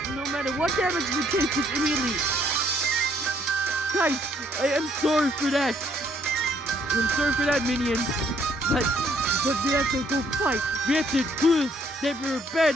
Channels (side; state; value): both; normal; correlation 0.66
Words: no matter what damage we take, just immediately. Guys, I am sorry for that. I'm sorry for that, minion. But we have to go fight. We have to prove that we're